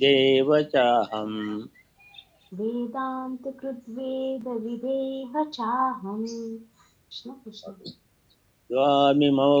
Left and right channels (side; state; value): both; identical; correlation 1.00